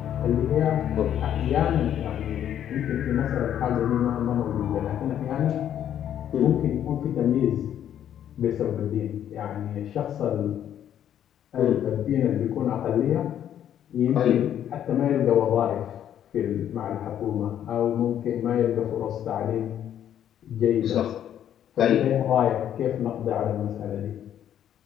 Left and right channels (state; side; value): quieter; right; 10.3 dB